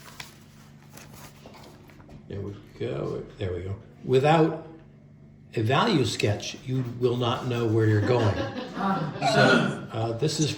there we go, there we go. Without a value sketch, you will not know where you're going. So this is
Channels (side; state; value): both; identical; correlation 1.00